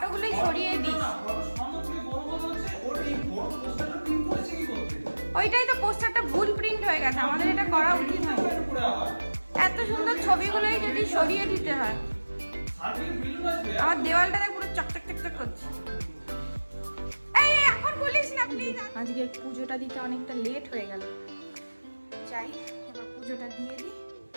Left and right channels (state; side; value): inverted; both; correlation -1.00